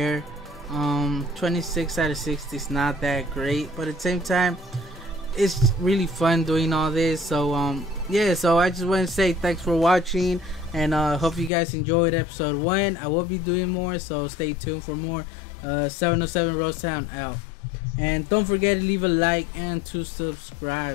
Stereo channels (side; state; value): right; drops out; at 11.5 s